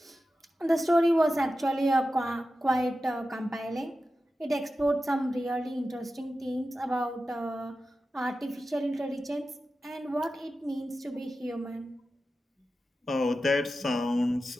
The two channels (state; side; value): normal; both; correlation 0.92